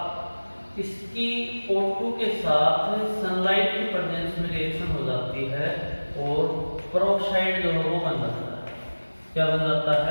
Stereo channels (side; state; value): both; inverted; correlation -1.00